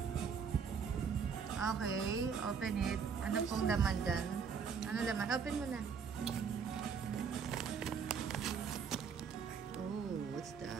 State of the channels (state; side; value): quieter; left; 6.3 dB